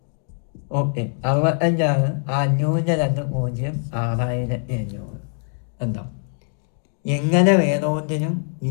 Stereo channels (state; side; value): silent; right; 61 dB below the other